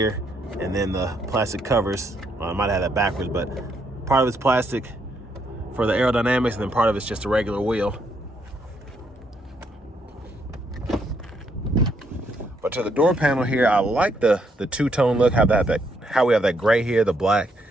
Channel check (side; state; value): both; normal; correlation 0.74